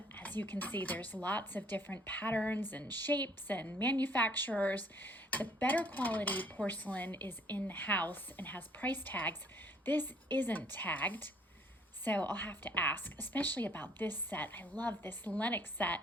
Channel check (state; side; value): normal; both; correlation 0.61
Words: As you can see, there's lots of different patterns and shapes and manufacturers. The better quality porcelain is in the house and has price tags. This isn't tagged, so I'll have to ask, especially about this set. I love this Lennox set.